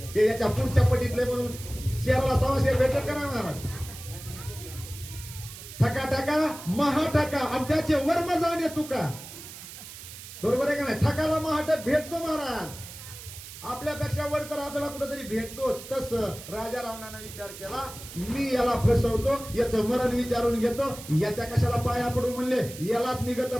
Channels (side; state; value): right; noise; hiss, 14 dB below the sound